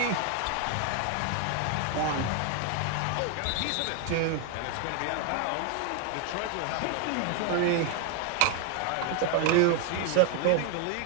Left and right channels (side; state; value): both; different; correlation 0.01